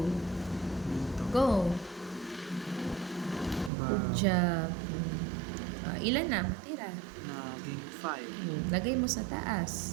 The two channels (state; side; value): drops out; left; at 3.7 s